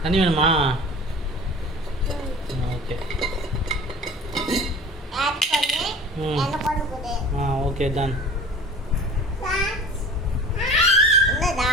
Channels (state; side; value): normal; both; correlation 0.40